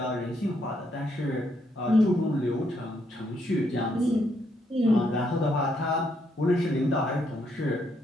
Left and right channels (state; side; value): normal; both; correlation 0.75